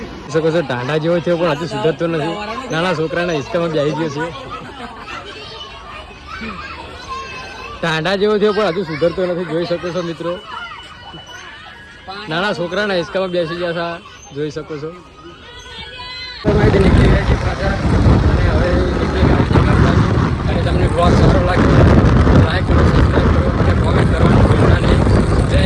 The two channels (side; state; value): both; identical; correlation 1.00